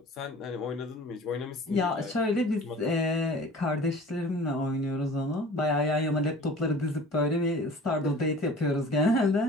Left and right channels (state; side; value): normal; both; correlation 0.43